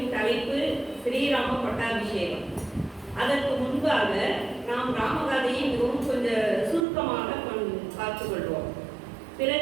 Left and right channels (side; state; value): left; drops out; at 6.9 s